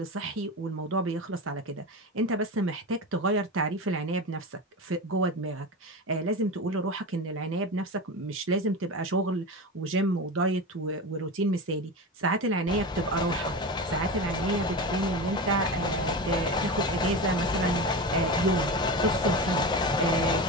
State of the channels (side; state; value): both; normal; correlation 0.24